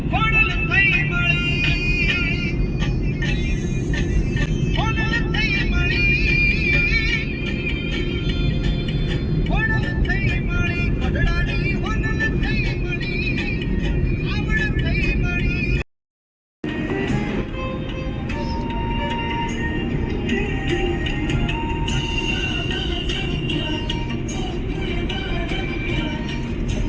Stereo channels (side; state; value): both; identical; correlation 1.00